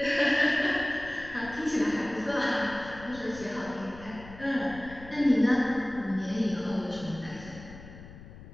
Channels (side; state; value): left; noise; rumble, 16 dB below the sound